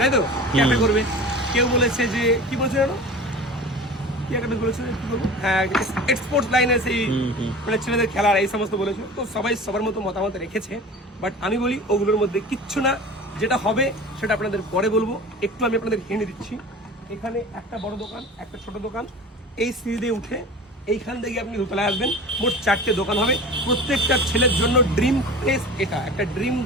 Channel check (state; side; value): normal; both; correlation 0.37